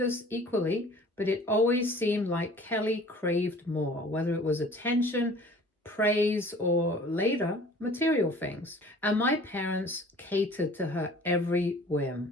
us equally, but it always seemed like Kelly craved more, whether it was attention, praise, or later, material things. And my parents catered to her every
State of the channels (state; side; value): normal; both; correlation 0.48